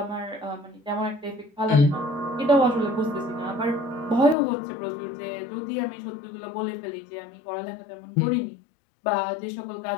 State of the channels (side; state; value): right; drops out; at 4.4 s